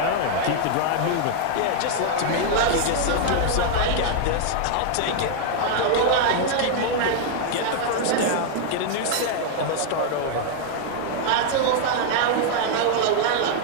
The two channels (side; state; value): both; different; correlation 0.00